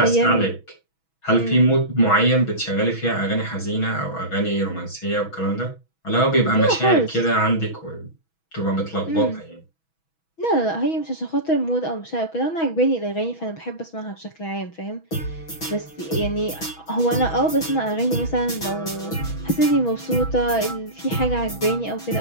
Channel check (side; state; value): right; late; 6.2 ms